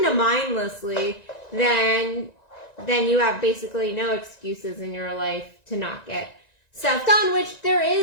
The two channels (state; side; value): late; right; 1.9 ms